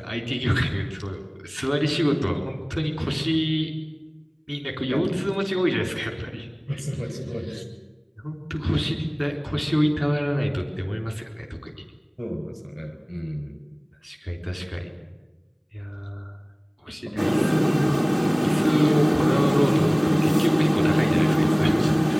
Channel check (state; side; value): identical; both; correlation 1.00